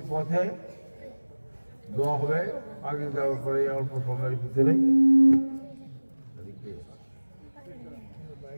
পথে দোয়া হবে। আগে দেওয়ার পরে অল্প সময়ের ভিতরে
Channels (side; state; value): both; inverted; correlation -1.00